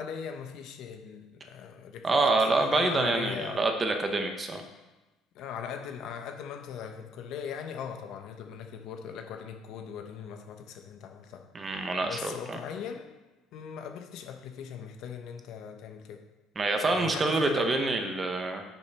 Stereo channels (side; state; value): both; normal; correlation 0.74